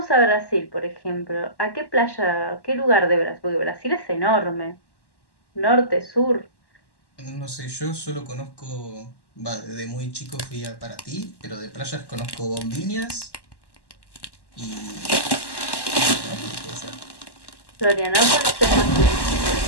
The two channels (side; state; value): right; late; 1.1 ms